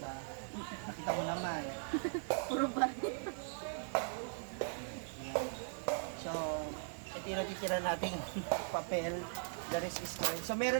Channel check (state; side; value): silent; left; digital silence